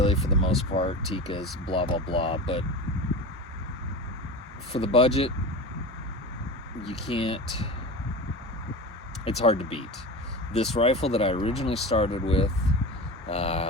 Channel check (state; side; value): normal; both; correlation 0.29